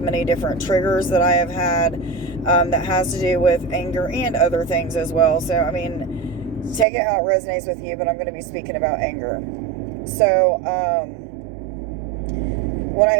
many different triggers that I have had, that has to do with anger and other things as well. So take it how it resonates with you, but I'm going to be speaking about anger. So when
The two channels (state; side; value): drops out; left; at 6.9 s